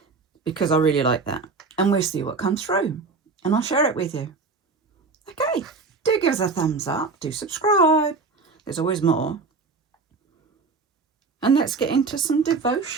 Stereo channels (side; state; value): left; quieter; 4.3 dB